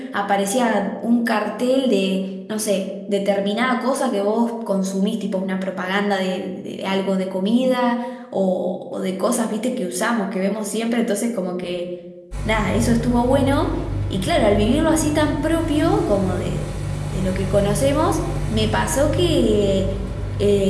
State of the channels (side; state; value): both; identical; correlation 1.00